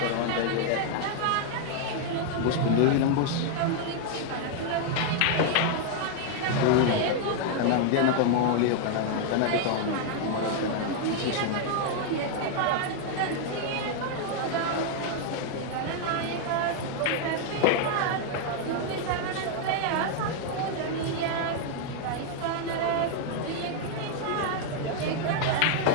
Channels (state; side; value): different; both; correlation 0.00